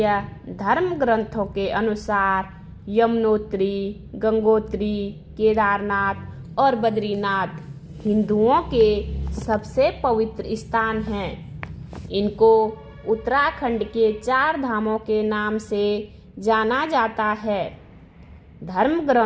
धर्म ग्रंथों के अनुसार यमुनोत्री, गंगोत्री, केदारनाथ और बद्रीनाथ हिंदुओं के सबसे पवित्र स्थान हैं। इनको उत्तराखंड के 4 धामों के नाम से जाना जाता है। धर्म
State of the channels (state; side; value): identical; both; correlation 1.00